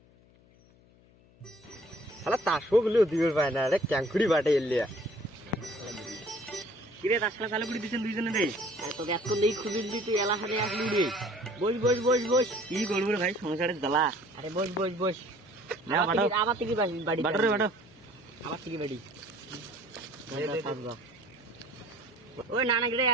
শালা তাসও গুলো দিবে পায় না রে ক্যাঙ্কুড়ি বাটে এলিয়া কিরে তাসলা চালু করে দিছেন দুইজনে রে তোকে এত নেই খুঁজে দিলি তুই এলা হাতে আসলু রে বস বস বস বস কি করবো রে ভাই সংসারের জ্বালা আরে বস বস বস আবার থেকে বাড়ি বাটো রে বাটো আবার থেকে বাড়ি ওই নানা গিরে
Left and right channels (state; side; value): noise; left; hum, 28 dB below the sound